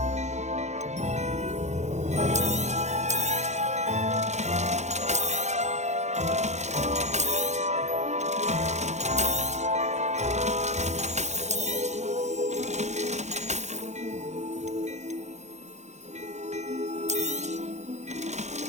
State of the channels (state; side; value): late; left; 0.33 ms